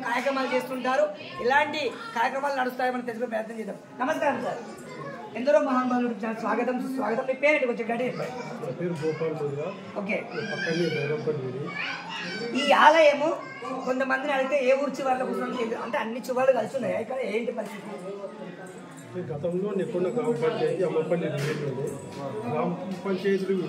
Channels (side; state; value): both; identical; correlation 1.00